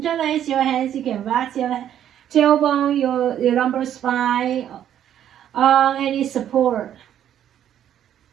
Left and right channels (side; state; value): left; quieter; 10.5 dB